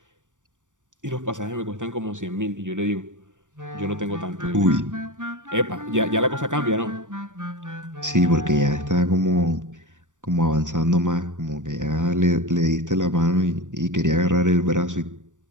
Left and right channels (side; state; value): left; late; 0.87 ms